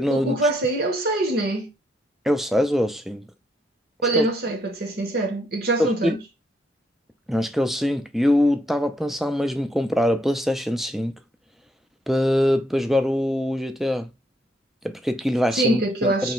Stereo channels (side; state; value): both; normal; correlation 0.74